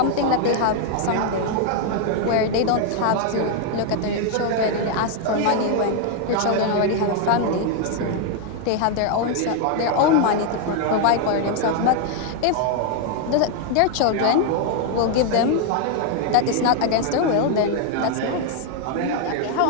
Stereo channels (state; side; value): different; both; correlation 0.00